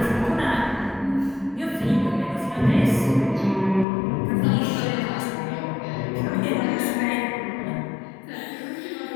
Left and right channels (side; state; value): right; drops out; at 3.9 s